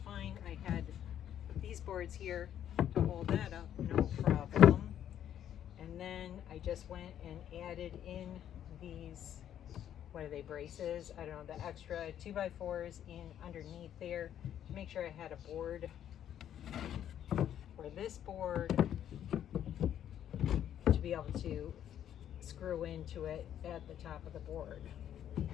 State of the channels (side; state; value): right; quieter; 10.3 dB